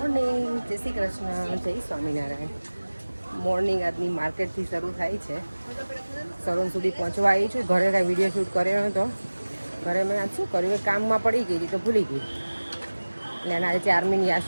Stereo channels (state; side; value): inverted; both; correlation -1.00